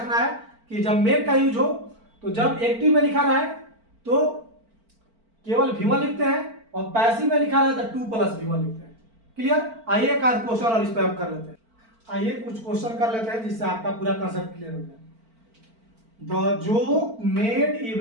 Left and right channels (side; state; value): left; late; 4.4 ms